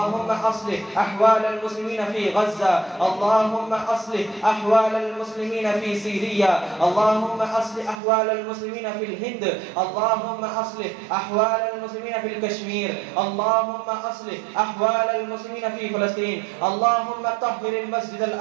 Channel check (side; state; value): left; drops out; at 8.0 s